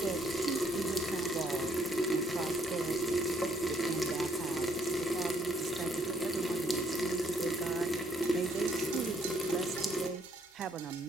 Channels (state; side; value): normal; both; correlation 0.68